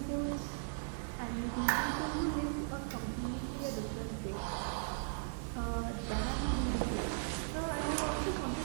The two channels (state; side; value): silent; left; digital silence